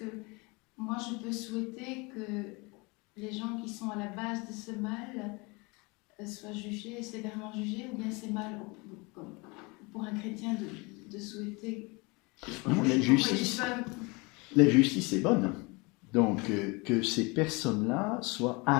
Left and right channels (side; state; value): right; quieter; 27.2 dB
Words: moi je peux souhaiter que les gens qui sont à la base de ce mal soient jugés, sévèrement jugés, ou bien c'est mal pour un chrétien de souhaiter... Non, la justice est bonne. Donc, que ces personnes-là soient